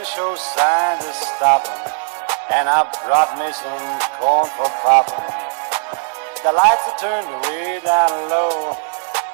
show signs of stopping, and I brought me some corn for popping. The lights are turned way down low.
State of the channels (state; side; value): silent; left; digital silence